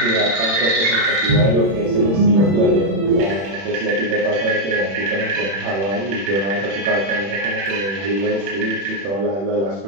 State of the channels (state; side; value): late; left; 31 ms